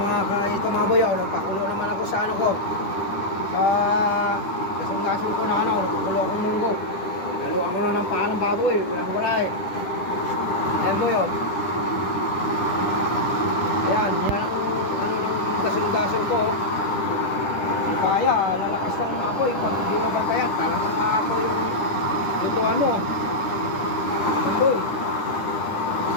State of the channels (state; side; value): late; right; 10 ms